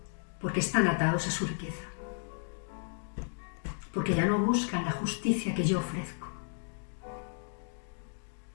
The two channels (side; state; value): right; silent; 55 dB below the other